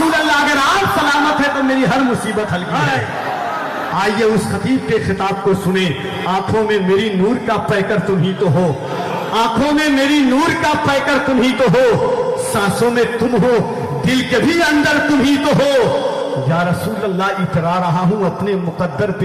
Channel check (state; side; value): identical; both; correlation 1.00